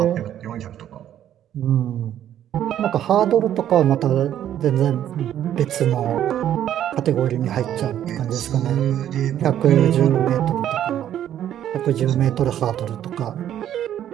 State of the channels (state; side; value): quieter; left; 11.0 dB